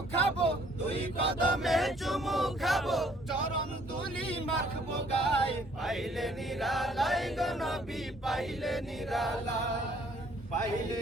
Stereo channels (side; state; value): both; normal; correlation 0.62